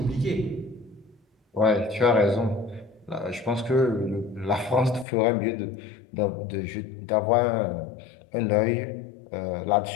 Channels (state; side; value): drops out; right; at 5.1 s